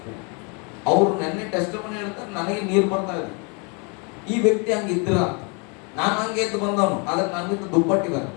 ಅವ್ರು ನೆನ್ನೆ ಟೆಸ್ಟ್ ಮನೆ ಹೇಳ್ತಾರೆ, ನನಗೆ ನೀರು ಬರ್ತಾ ಇದೆ. ಈ ವ್ಯಕ್ತಿ ಹಂಗಿದ್ರ ಅಂತ. ನಾನು ಹಂಗೆ ಎದ್ದು ಬಂದವನು, ಆದ್ರೆ ನನ್ಗಿಂತ ದುಪ್ಪಟ್ಟಿದ್ದಾರೆ.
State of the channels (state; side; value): quieter; right; 33.7 dB